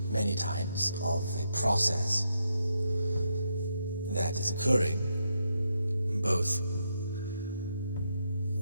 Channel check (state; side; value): inverted; both; correlation -0.80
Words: many times of a process that is occurring both